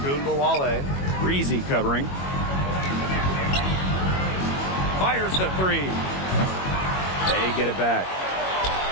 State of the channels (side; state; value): right; late; 21 ms